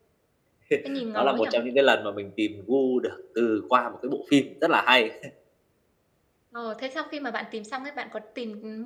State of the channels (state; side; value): identical; both; correlation 1.00